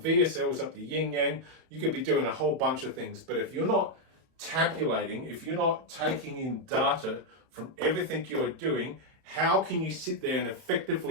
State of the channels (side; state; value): left; late; 32 ms